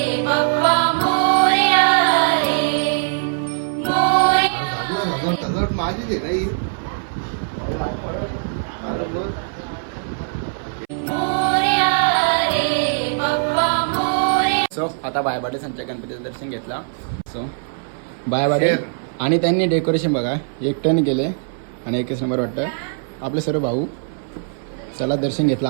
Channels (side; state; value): left; silent; 61 dB below the other